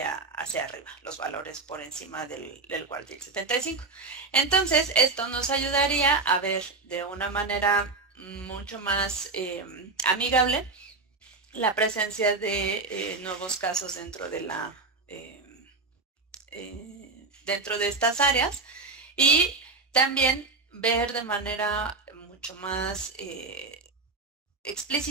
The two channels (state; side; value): quieter; left; 3.8 dB